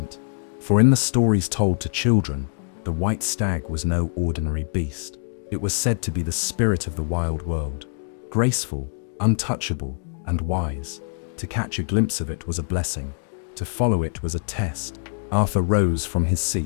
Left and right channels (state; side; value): silent; right; digital silence